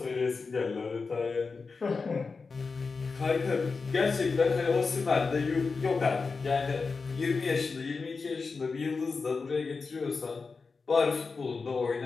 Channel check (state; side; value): quieter; right; 4.5 dB